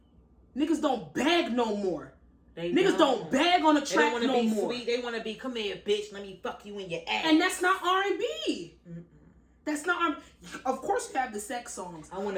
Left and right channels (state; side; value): identical; both; correlation 1.00